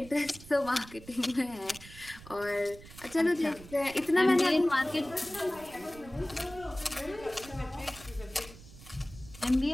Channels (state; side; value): noise; right; rumble, 18 dB below the sound